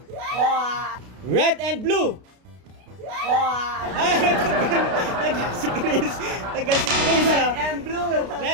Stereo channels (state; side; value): late; left; 32 ms